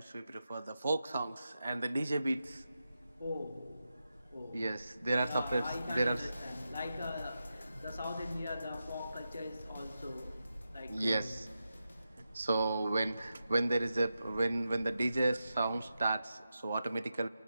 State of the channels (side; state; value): both; inverted; correlation -0.89